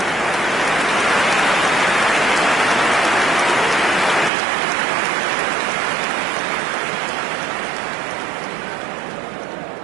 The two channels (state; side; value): drops out; left; at 4.3 s